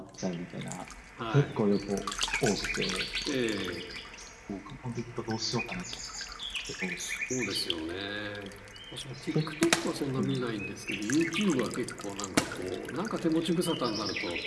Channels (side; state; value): both; identical; correlation 1.00